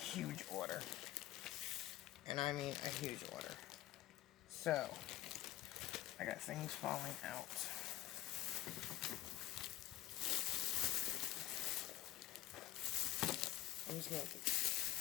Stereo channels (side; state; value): right; quieter; 15.9 dB